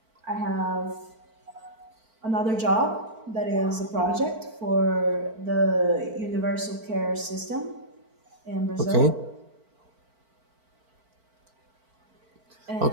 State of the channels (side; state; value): left; late; 4.5 ms